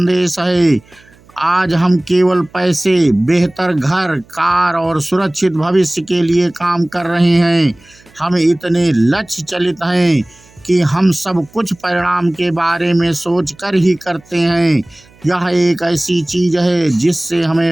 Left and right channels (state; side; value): noise; right; hum, 29 dB below the sound